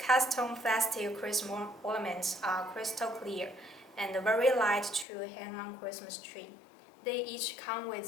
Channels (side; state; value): right; drops out; at 5.1 s